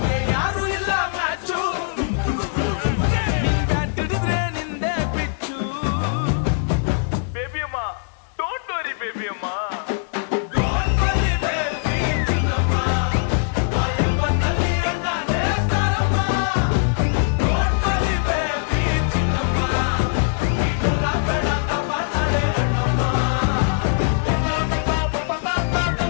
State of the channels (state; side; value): silent; right; digital silence